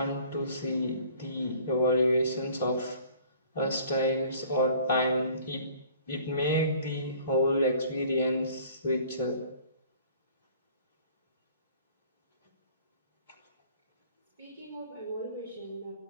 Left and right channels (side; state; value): both; inverted; correlation -0.52